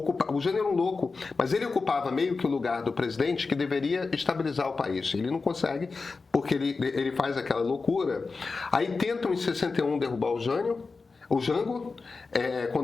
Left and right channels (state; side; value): quieter; right; 4.3 dB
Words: O Jânio era um louco, mas ele ocupava meio que o lugar do presidente que deveria estabilizar o país. Ele não consegue, porque ele faz aquela loucura. Aí tentam em 61 derrubar o Jango,